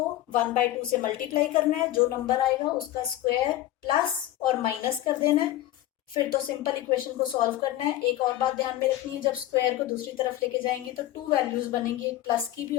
1/2 से मल्टीप्लाई करना है, जो नंबर आएगा उसका स्क्वायर प्लस और माइनस कर देना है, फिर तो सिंपल इक्वेशन को सॉल्व करना है। एक और बात ध्यान में रखनी है, जब स्क्वायर को दूसरी तरफ लेके जाएंगे तो 2 वैल्यूज बनेंगी, एक प्लस की भी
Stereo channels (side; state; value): right; quieter; 14.1 dB